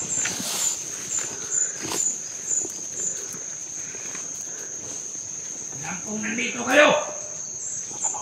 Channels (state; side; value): identical; both; correlation 1.00